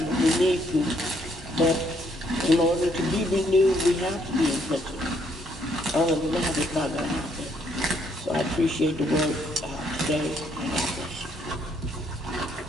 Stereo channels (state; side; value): normal; both; correlation 0.70